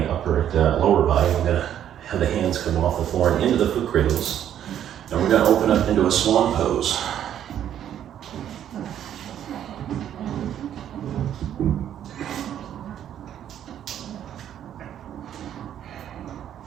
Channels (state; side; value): quieter; left; 10.3 dB